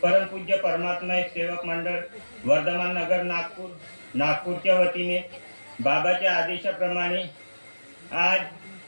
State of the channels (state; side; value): inverted; both; correlation -1.00